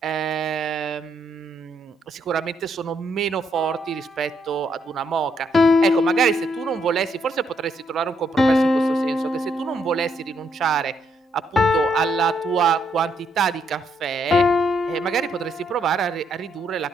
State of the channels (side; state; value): both; normal; correlation 0.75